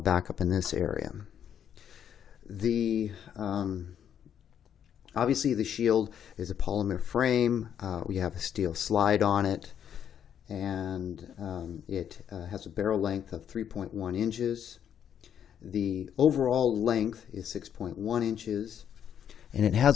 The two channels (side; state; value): right; quieter; 9.0 dB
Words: up in this area. Obviously the Shield is a polymer frame. We have a steel slide on it, and it has a barrel length of 3.1 inches. The overall length is 6.1 inches. and it